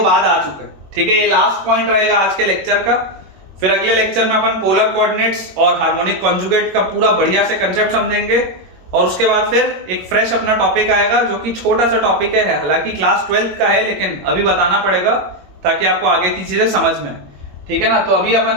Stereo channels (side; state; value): left; late; 21 ms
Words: बाद आ चुका है, ठीक है? ये लास्ट पॉइंट रहेगा आज के लेक्चर का। फिर अगले लेक्चर में अपन पोलर कोऑर्डिनेट्स और हार्मोनिक कॉन्जुगेट का पूरा बढ़िया से कंसेप्ट समझेंगे, और उसके बाद फिर एक फ्रेश अपना टॉपिक आएगा जो कि छोटा सा टॉपिक है, हालांकि क्लास 12th का है, लेकिन अभी बताना पड़ेगा ताकि आपको आगे की चीजें समझ में, ठीक है ना? तो अभी